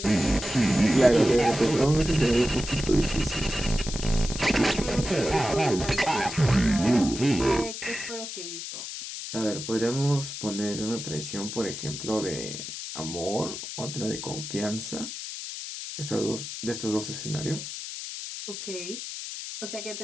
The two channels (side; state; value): left; noise; hiss, 8 dB below the sound